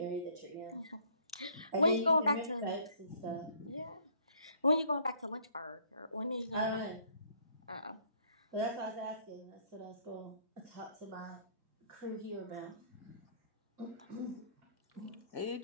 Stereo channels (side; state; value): both; inverted; correlation -0.61